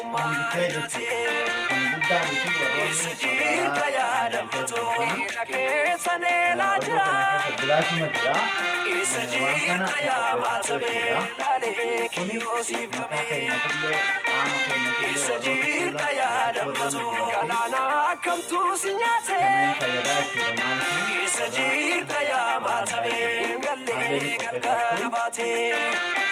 jate Sajirta ya damato jake sanela jira Sajirta ya matabe lale kiyosif kame Sajirta ya damato kalana kamtu sinyate Sajirta ya matabe galle galgala bate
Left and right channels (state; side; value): identical; both; correlation 1.00